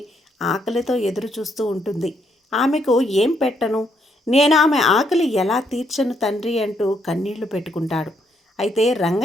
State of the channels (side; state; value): both; normal; correlation 0.73